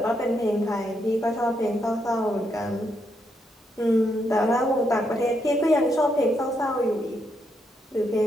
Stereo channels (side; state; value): both; normal; correlation 0.79